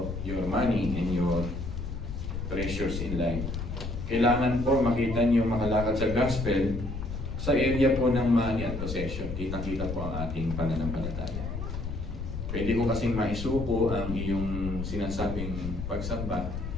your money and your treasures in life. Kailangan po makita niyo makalakad sa gospel sa area po ng money at possession. Kitang-kita po ang ating pananampalataya. Pwede ko kasing maisuko ang iyong sinasabing pagsamba,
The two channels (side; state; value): left; noise; rumble, 5 dB below the sound